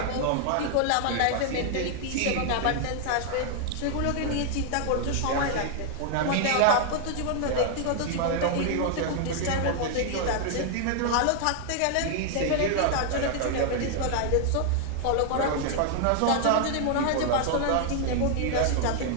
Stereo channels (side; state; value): both; different; correlation 0.00